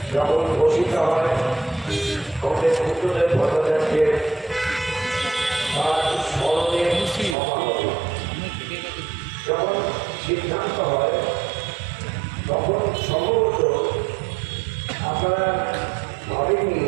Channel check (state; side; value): drops out; left; at 7.4 s